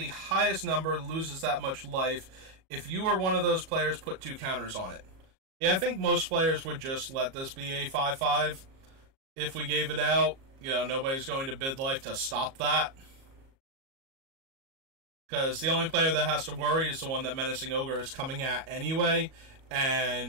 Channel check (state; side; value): late; left; 37 ms